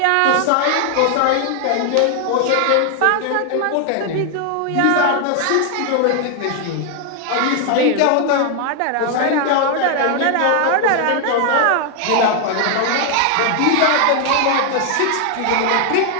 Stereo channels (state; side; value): different; both; correlation 0.00